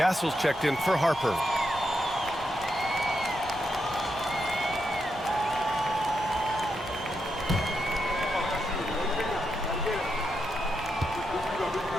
checked in for Harper.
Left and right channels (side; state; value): both; normal; correlation 0.84